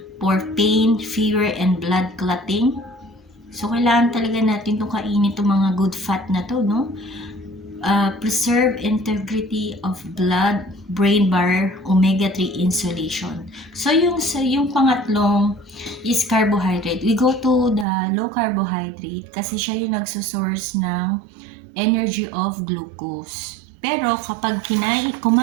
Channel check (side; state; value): left; drops out; at 17.9 s